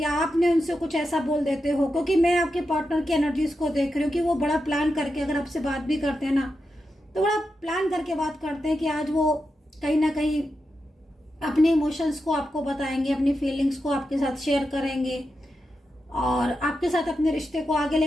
आपने उनसे कुछ ऐसा बोल देते हो। क्योंकि मैं आपके पार्टनर की एनर्जीज को देख रही हूँ कि वो बड़ा प्लान करके अगर आपसे बात भी करते हैं ना, तो बड़ा प्लान करके बात करते हैं कि आज वो कहीं ना कहीं अपने इमोशंस को आपको बताएंगे, अपनी फीलिंग्स को आपके साथ शेयर करेंगे और आपके साथ अपने रिश्ते को आगे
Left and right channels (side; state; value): both; normal; correlation 0.88